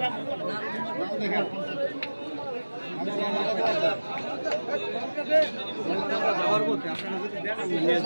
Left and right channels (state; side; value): inverted; both; correlation -1.00